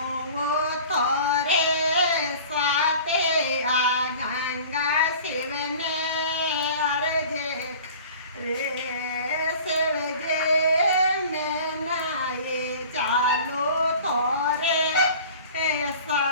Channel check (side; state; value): both; inverted; correlation -0.43